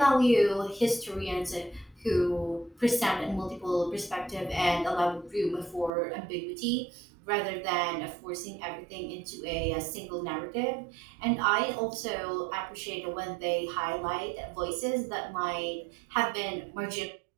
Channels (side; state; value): left; drops out; at 5.9 s